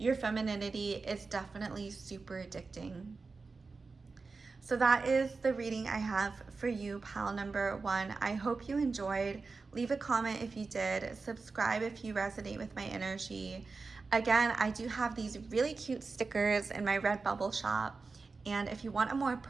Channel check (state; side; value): quieter; left; 4.2 dB